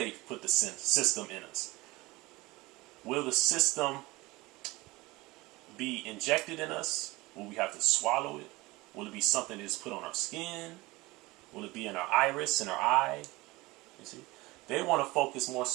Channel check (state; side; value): quieter; left; 21.3 dB